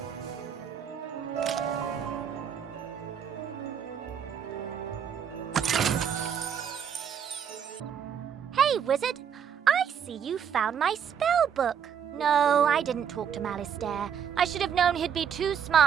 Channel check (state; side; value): quieter; left; 8.0 dB